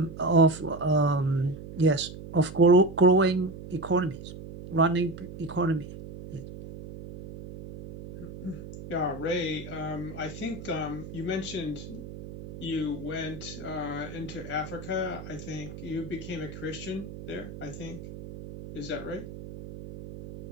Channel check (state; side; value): noise; right; hum, 12 dB below the sound